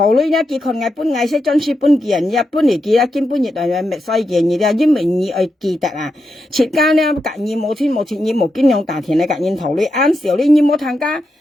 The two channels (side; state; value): both; normal; correlation 0.86